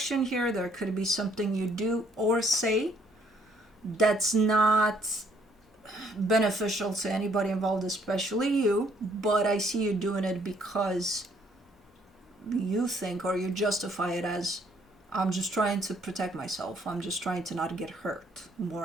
here, there could be something you do or say that's not beneficial to anybody involved, especially you, but I see you doing it because you think, or you justify it as, I'm just trying to protect myself, I'm just trying to not get hurt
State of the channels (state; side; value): normal; both; correlation 0.66